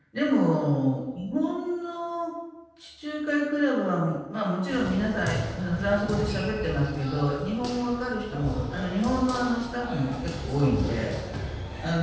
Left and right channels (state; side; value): identical; both; correlation 1.00